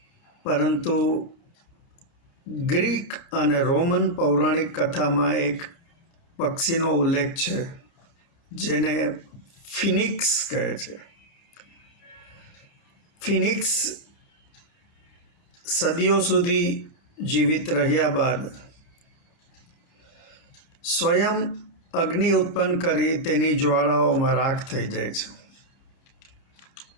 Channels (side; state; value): right; late; 29 ms